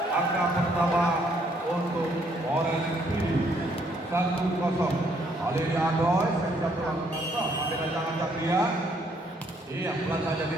angka pertama untuk Orange City 1-0. Ali Adoy, saya pulang kantor, Abidal Ancang-Ancang dia. Iya, pelan saja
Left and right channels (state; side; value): normal; both; correlation 0.68